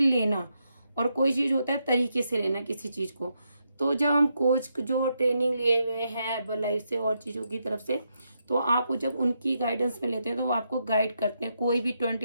लेना और कोई चीज़ होता है तरीके से लेना किसी चीज़ को, तो जब हम कोच जो ट्रेनिंग लिए हुए हैं हर्बल लाइफ से और चीज़ों की तरफ से, तो आप जब उनकी गाइडेंस में लेते हैं तो वो आपको गाइड करते हैं। कोई भी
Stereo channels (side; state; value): both; inverted; correlation -0.81